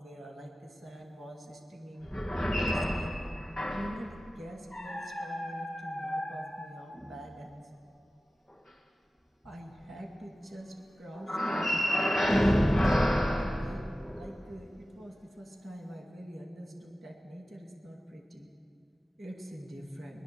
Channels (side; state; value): both; normal; correlation 0.95